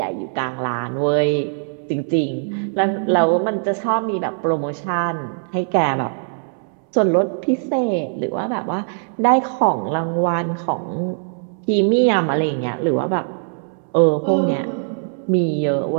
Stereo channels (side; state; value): left; silent; digital silence